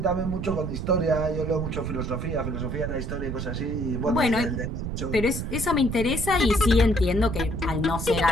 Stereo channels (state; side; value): noise; right; rumble, 4 dB below the sound